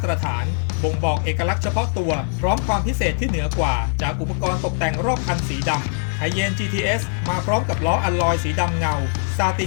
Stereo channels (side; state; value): right; silent; 65 dB below the other